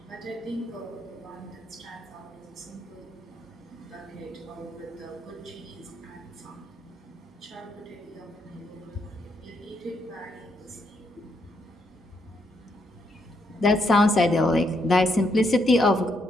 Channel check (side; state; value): both; normal; correlation 0.77